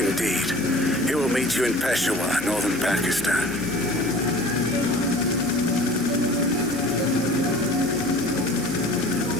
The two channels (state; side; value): noise; left; hum, 17 dB below the sound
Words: He will meet you in Peshawar, northern Pakistan.